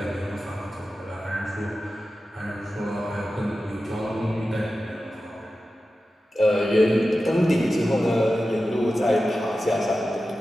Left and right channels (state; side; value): normal; both; correlation 0.93